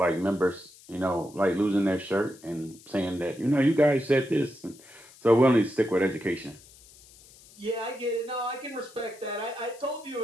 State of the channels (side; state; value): left; noise; hiss, 23 dB below the sound